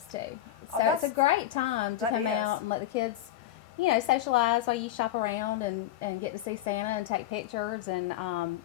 too. So it's a great time to come out and let the kids, socialize while you shop around and get to see Santa and take pictures, and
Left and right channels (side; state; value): right; quieter; 12.7 dB